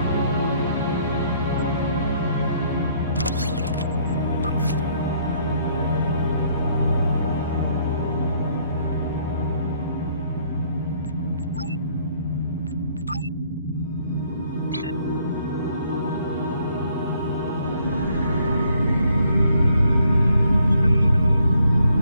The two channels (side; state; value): both; inverted; correlation -0.66